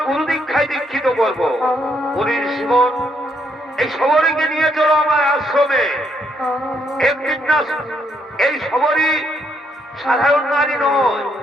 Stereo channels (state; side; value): normal; both; correlation 0.74